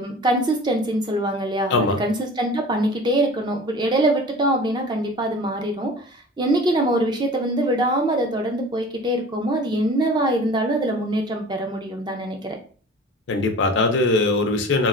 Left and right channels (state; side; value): normal; both; correlation 0.41